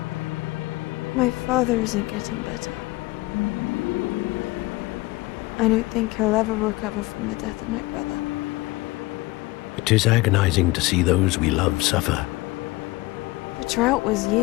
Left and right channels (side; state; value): right; quieter; 21.1 dB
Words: My father isn't getting better. I don't think he'll ever recover from the death of my brother. It is agonizing to see those we love suffer. The drought was